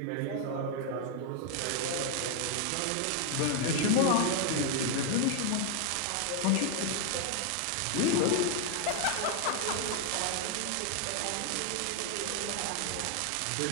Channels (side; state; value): both; different; correlation 0.00